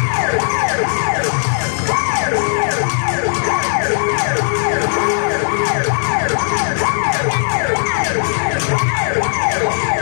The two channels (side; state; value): right; silent; 64 dB below the other